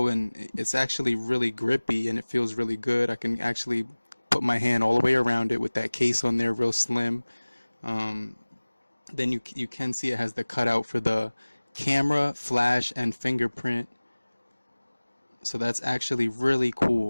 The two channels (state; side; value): inverted; both; correlation -1.00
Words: and it's actually really grippy, and it feels really good. I can actually put my hand all the way around it with that case on there, real slim. Then you can see it has the cutout for the camera, flash, and fingerprint. So that's actually really